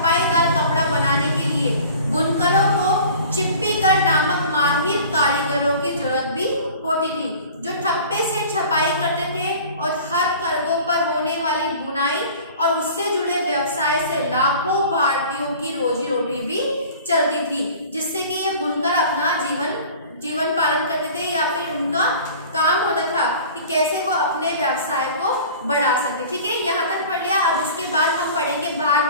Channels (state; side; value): inverted; both; correlation -0.43